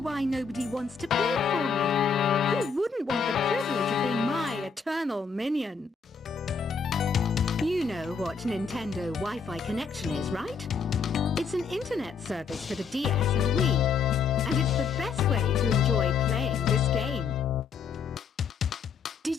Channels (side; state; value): right; quieter; 5.7 dB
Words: nobody wants to play for me. Who wouldn't want the privilege of being my eternal minion? You know what Nintendo Wi-Fi connection is, right? It's an internet service for the DS and Wii, and it's the best way to enjoy playing this game.